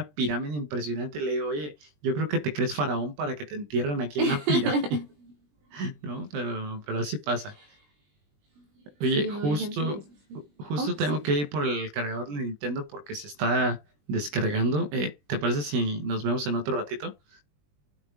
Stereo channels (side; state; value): left; late; 20 ms